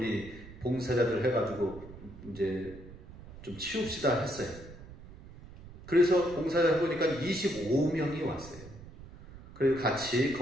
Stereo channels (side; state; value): right; noise; rumble, 17 dB below the sound